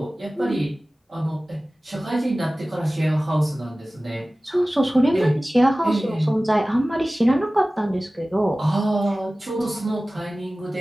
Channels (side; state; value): both; normal; correlation 0.97